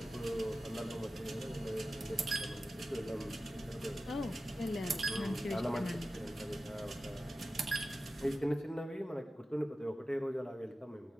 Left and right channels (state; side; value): normal; both; correlation 0.94